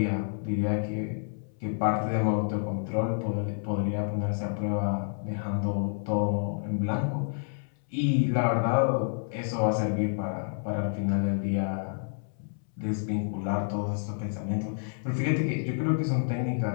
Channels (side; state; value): right; silent; 59 dB below the other